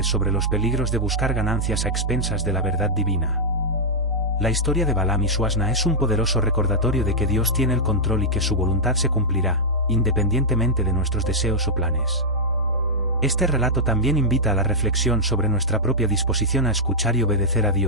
sobre los peligros de buscar ganancias a expensas de la verdad divina. La historia de Balaam y su asna es un poderoso recordatorio de que Dios tiene el control y que su voluntad se cumplirá, independientemente de nuestros deseos o planes. Este relato también invita a la reflexión sobre nuestra propia disposición a escuchar y obedecer a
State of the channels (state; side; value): normal; both; correlation -0.06